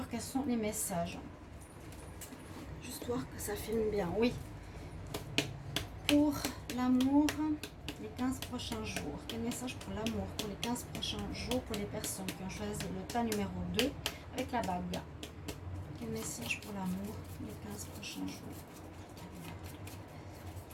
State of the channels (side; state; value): both; identical; correlation 1.00